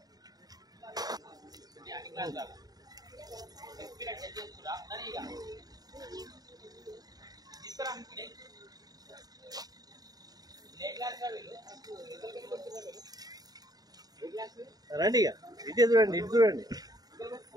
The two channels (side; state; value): left; late; 0.19 ms